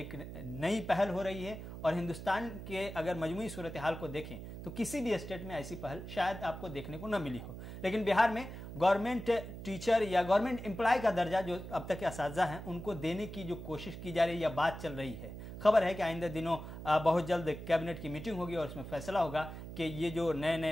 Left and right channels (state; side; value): noise; right; hum, 10 dB below the sound